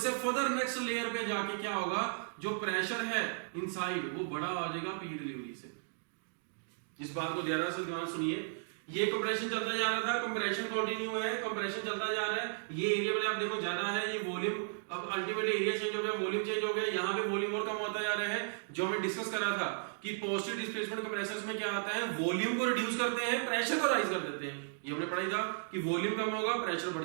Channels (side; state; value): left; silent; digital silence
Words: फर्दर नेक्स्ट लेयर पे जाके क्या होगा, जो प्रेशर है इनसाइड वो बड़ा आ जाएगा पी डिलीवरी से। इस बात को ध्यान से ध्यान सुनिए, ये कंप्रेशन चलता जा रहा था, कंप्रेशन कंटिन्यू है, कंप्रेशन चलता जा रहा है, ये एरिया में आप देखो ज्यादा है, ये वॉल्यूम अब अल्टीमेटली एरिया चेंज हो गया, वॉल्यूम चेंज हो गया, यहाँ पे वॉल्यूम और कम होता जा रहा है। जो हमने डिस्कस करा था कि पॉजिटिव डिस्प्लेसमेंट कंप्रेसर्स में क्या आता है, वॉल्यूम को रिड्यूस करते हैं, प्रेशर को राइज कर देते हैं। ये हमने पढ़ा था कि वॉल्यूम कम होगा प्रेशर बढ़